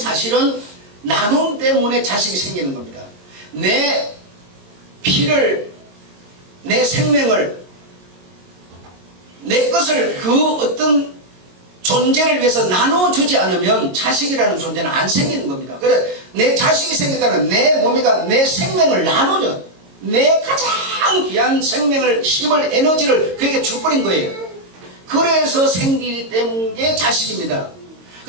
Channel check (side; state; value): left; late; 22 ms